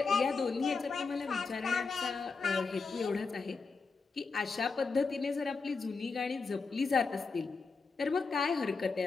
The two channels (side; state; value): right; quieter; 4.5 dB